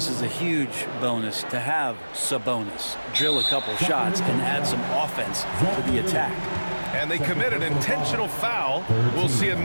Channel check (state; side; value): inverted; both; correlation -1.00